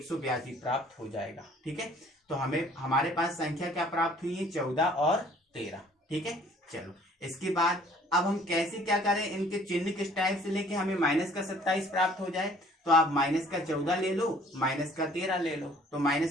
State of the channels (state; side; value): normal; both; correlation 0.56